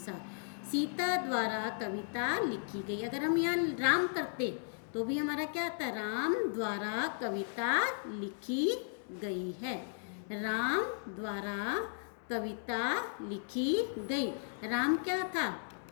सीता द्वारा कविता लिखी गई। अगर हम यहाँ राम करते तो भी हमारा क्या आता? राम द्वारा कविता लिखी गई है। राम द्वारा कविता लिखी गई। राम क्या था?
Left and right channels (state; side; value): silent; right; digital silence